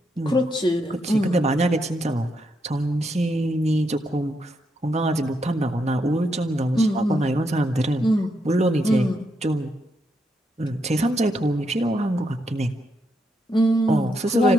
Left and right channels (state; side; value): normal; both; correlation 0.80